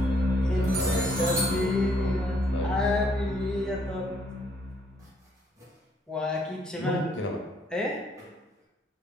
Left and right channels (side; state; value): both; normal; correlation 0.68